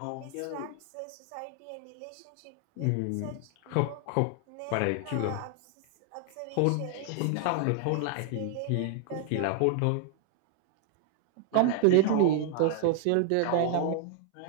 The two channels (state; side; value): different; both; correlation 0.00